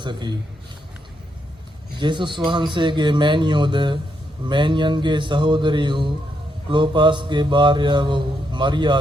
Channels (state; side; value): normal; both; correlation 0.79